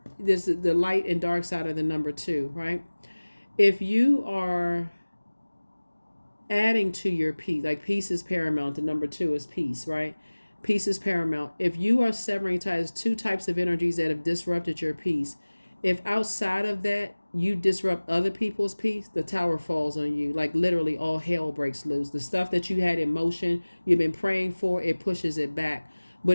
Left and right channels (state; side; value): inverted; both; correlation -1.00